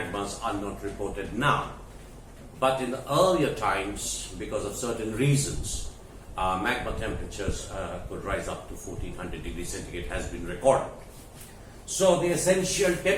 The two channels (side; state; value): both; identical; correlation 1.00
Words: are not reported now. But in the earlier times, because of certain reasons, magma temperatures could rise up to 1400 degrees centigrade has been recorded. So the essential